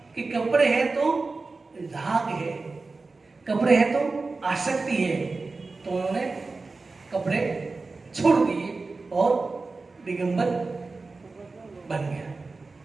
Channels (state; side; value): quieter; left; 3.8 dB